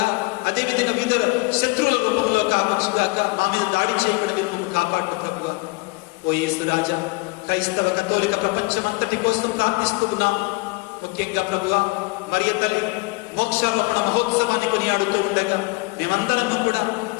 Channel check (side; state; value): right; quieter; 25.9 dB